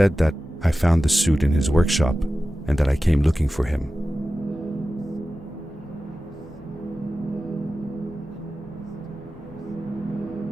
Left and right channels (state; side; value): normal; both; correlation 0.94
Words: that I found the suit in his workshop and that I came looking for him.